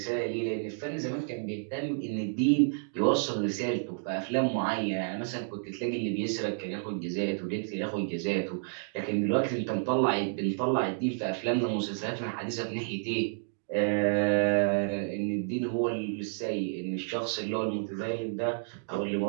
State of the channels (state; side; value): silent; left; digital silence